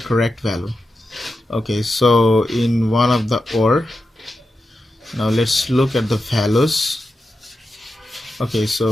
value. Okay, so in one of the ore, now let's look at the values. Okay,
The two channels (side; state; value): both; normal; correlation 0.90